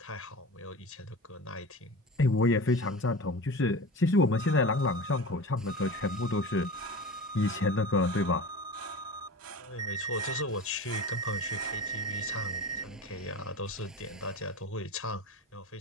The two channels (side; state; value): both; normal; correlation 0.32